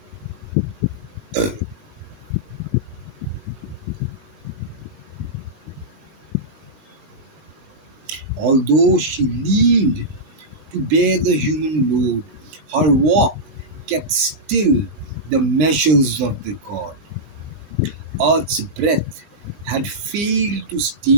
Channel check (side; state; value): left; late; 20 ms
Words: although she leaned to bear the human load, her walk kept still the measures of the god. Earth's breath had failed to